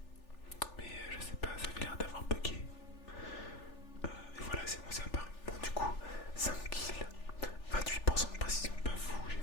mais je sais pas, ça avait l'air d'avoir bugué. Et voilà c'est bon, ça apparaît. Bon du coup 5 kills, 28% de précision, pas fou, j'ai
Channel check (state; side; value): late; right; 3.4 ms